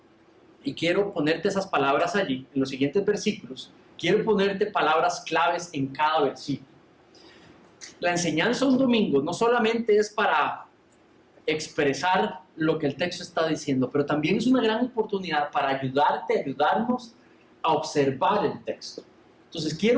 y quiero ponerte esas palabras allí, en los siguientes versículos, quiero ponerte palabras claves en cada versículo. La enseñanza un domingo no solamente es para expresar lo que el texto está diciendo, pero también es una gran oportunidad para ayudarnos a observar el texto. Entonces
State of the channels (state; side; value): identical; both; correlation 1.00